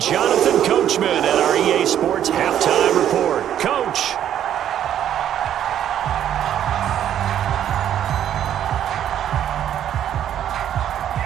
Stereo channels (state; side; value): quieter; left; 10.5 dB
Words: Jonathan Coachman at our EA Sports Halftime Report. Coach.